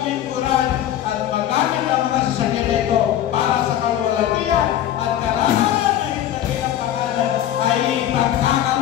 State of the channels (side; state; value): right; quieter; 11.7 dB